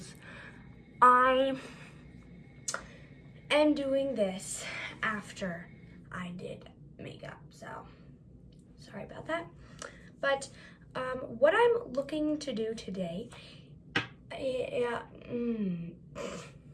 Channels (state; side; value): identical; both; correlation 1.00